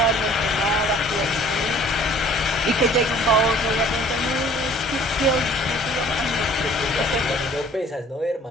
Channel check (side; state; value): both; normal; correlation 0.53